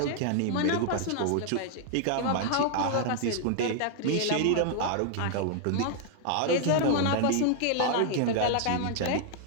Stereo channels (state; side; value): different; both; correlation 0.00